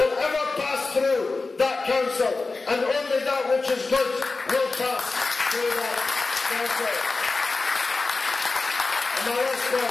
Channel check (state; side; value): quieter; right; 3.8 dB